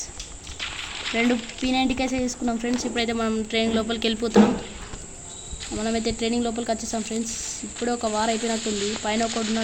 2 P90 కేసే తీసుకున్నాం ఫ్రెండ్స్. ఇప్పుడైతే మనం ట్రైన్ లోపలికి వెళ్ళిపోతున్నాం. మనమైతే ట్రైనింగ్ లోపలికి వచ్చేసాం ఫ్రెండ్స్. ఇప్పుడే ఒక వారం అయిపోయినట్టుంది. పైన ఒకటి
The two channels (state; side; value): identical; both; correlation 1.00